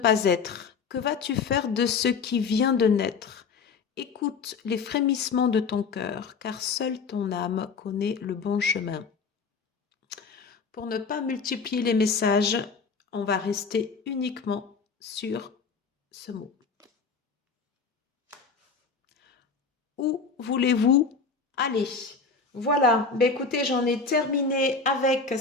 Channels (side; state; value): right; quieter; 5.0 dB